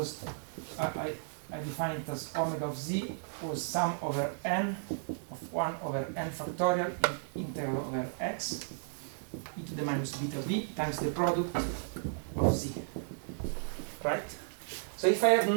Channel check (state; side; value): silent; left; 55 dB below the other